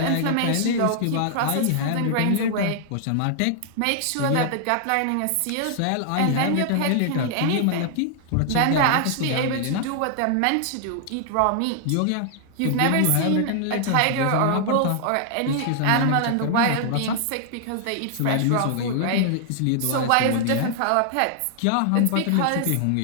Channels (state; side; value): different; both; correlation 0.00